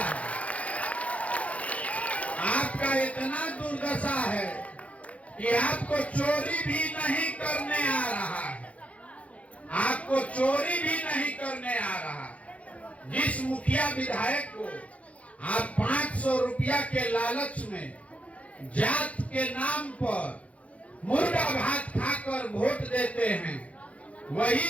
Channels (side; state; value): right; late; 0.065 ms